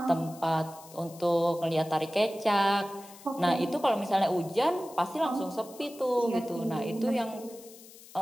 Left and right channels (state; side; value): noise; left; hiss, 20 dB below the sound